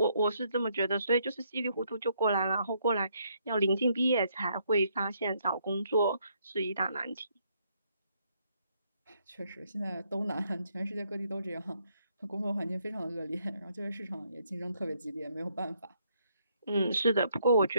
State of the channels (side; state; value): both; inverted; correlation -0.72